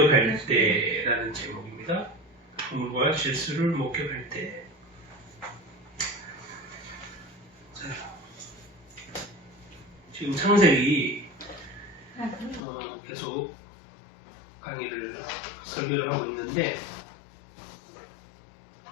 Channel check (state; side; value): drops out; right; at 12.6 s